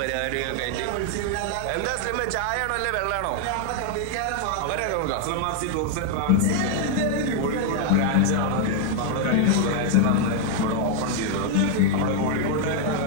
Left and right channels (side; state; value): both; different; correlation 0.00